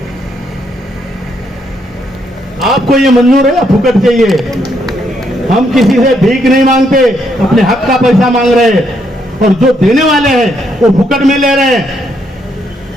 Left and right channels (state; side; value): normal; both; correlation 0.74